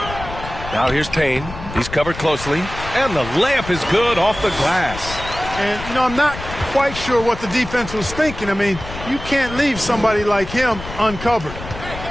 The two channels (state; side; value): noise; left; rumble, 11 dB below the sound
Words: Now here's Payne. He's covered closely. And the layup is good off the glass. And, you know, I'm not quite sure what the defense was thinking. I mean, you can't leave somebody like him uncovered.